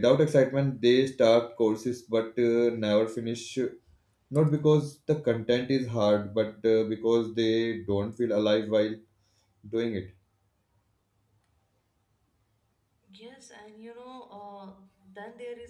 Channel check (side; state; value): both; identical; correlation 1.00